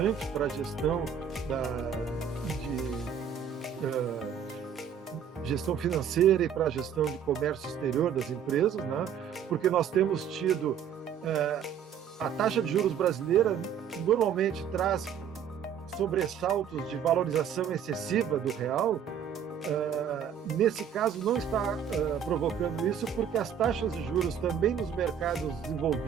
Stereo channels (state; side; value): quieter; left; 8.3 dB